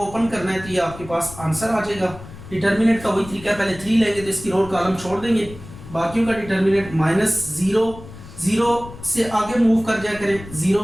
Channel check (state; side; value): noise; left; rumble, 16 dB below the sound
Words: करना है तो ये आपके पास आंसर आ जाएगा। डिटर्मिनेंट का वही तरीका है, पहले 3 लेंगे तो इसकी रो कॉलम छोड़ देंगे, बाकियों का डिटर्मिनेंट -0 0 से आगे मूव कर जाया करें, 0